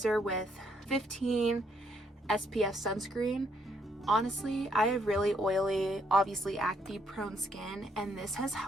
with 15 SPF sunscreen. Honestly, I have really oily, obviously acne prone skin, and this has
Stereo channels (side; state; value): both; normal; correlation 0.72